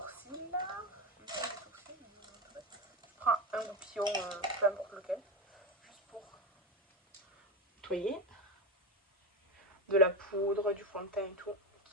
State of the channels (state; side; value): normal; both; correlation 0.17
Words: Je prends un goupillon, peu importe lequel, juste pour nettoyer. De la poudre, du fond de teint et tout,